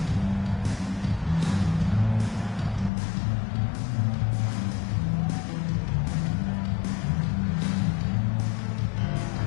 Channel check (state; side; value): drops out; right; at 2.9 s